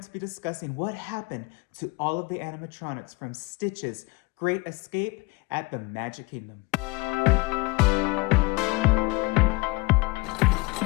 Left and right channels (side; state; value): right; quieter; 24.6 dB